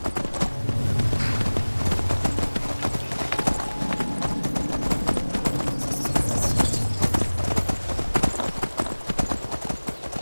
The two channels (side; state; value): both; inverted; correlation -1.00